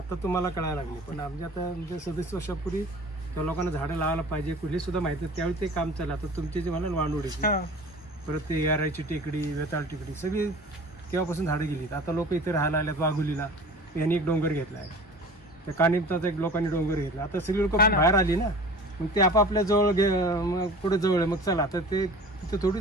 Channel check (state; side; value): normal; both; correlation 0.41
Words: तुम्हाला कळायला लागले, पण आमच्या आता म्हणजे 37 वर्षापूर्वी त्या लोकांना झाडं लावायला पाहिजे कुठली सुद्धा माहिती आहे. त्यावेळी ते काम चाललं. आता तुमचे जे म्हणाल वांडोडीची, हा. परत ते यारायची टेकडी, वेताळ टेकडी, सगळी तेव्हापासून झाडं गेलीत. आता लोक इथे राहायला आल्यात. वाघुलीला यांनी एक डोंगर घेतला आहे, त्या कानिमताचा एक लोकांनी डोंगर घेतला. आता सगळी लोक हा ना. बाहेर आली ना, मग ते आपापल्या जवळ मग पुढे जवळ आहे. मग चला आता ते तिथे थोडी